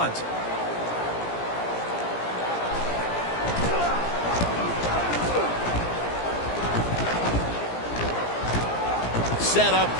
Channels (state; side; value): late; right; 17 ms